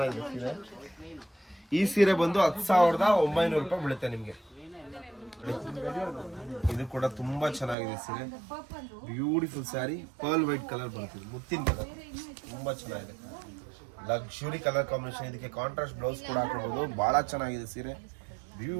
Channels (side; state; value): left; drops out; at 7.8 s